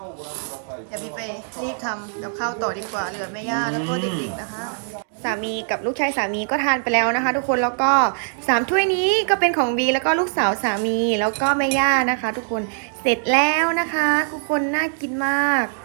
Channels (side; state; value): left; silent; digital silence